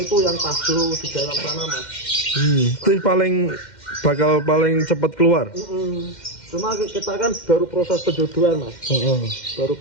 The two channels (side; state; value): right; late; 2.1 ms